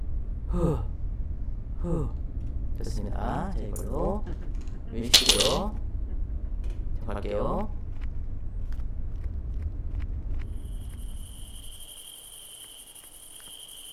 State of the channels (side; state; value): both; identical; correlation 1.00